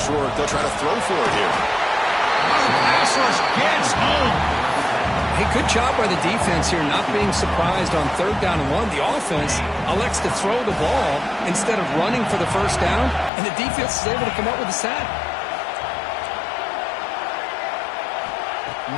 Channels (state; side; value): drops out; right; at 13.3 s